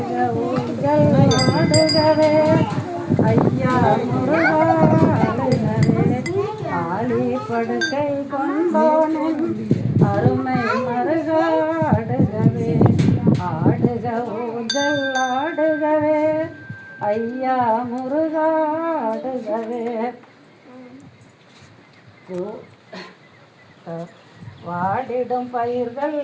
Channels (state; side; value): identical; both; correlation 1.00